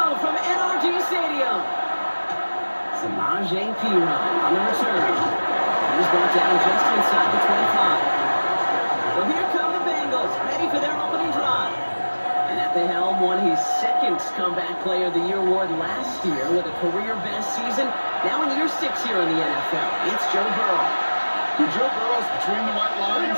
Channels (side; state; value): both; inverted; correlation -1.00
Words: from NRG Stadium. Samaje Perine on the return. He's brought down just inside the 25. So here come the Bengals, ready for their opening drive. And at the helm, won his second Comeback Player of the Year award last year with a career-best season. Now in year 6 here in the NFL, it's Joe Burrow. When Joe Burrow's between the white lines,